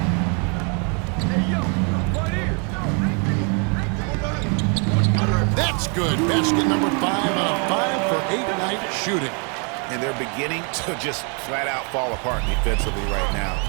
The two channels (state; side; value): quieter; left; 37.0 dB